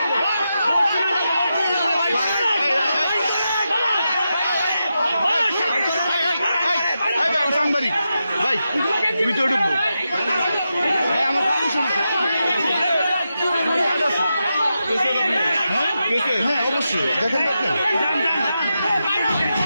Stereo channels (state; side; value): inverted; both; correlation -0.88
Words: সাংবাদিক ভাই ভিতরে ঢুকবো ভাই আমার পারমিশন আছে হ্যাঁ অবশ্যই দেখেন